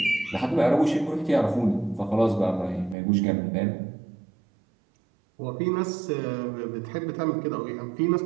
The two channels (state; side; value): drops out; left; at 3.0 s